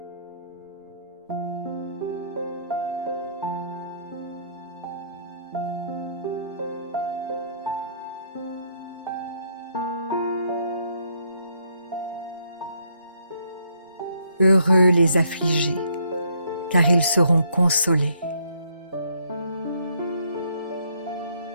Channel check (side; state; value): both; inverted; correlation -0.69